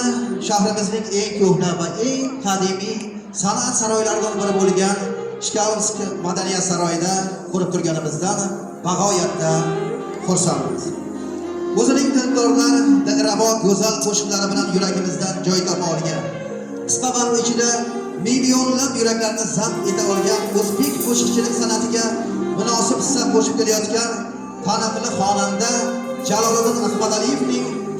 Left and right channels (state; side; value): identical; both; correlation 1.00